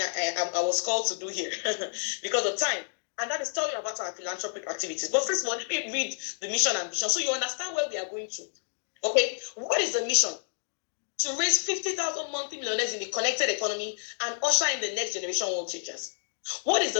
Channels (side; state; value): right; silent; digital silence